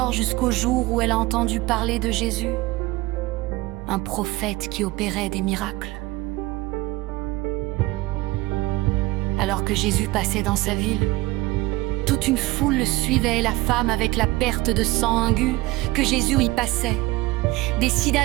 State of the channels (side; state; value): left; quieter; 19.9 dB